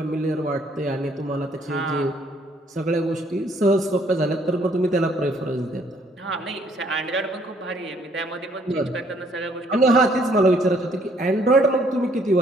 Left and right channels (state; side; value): normal; both; correlation 0.65